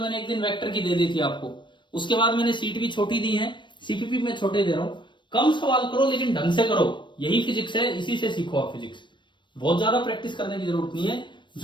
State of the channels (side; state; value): right; late; 0.22 ms